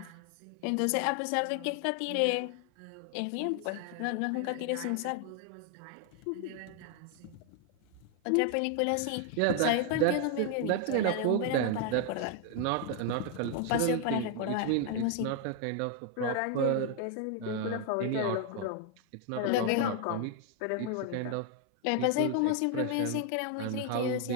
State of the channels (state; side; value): different; both; correlation 0.00